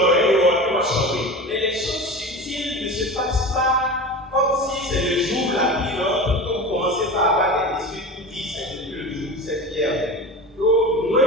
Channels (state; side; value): normal; both; correlation 0.30